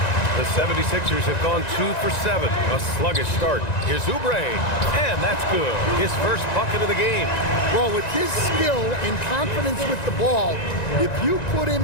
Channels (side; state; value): right; late; 1.9 ms